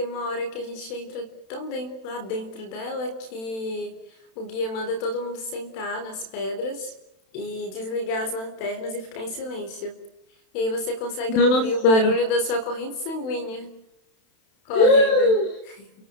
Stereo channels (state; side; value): late; right; 31 ms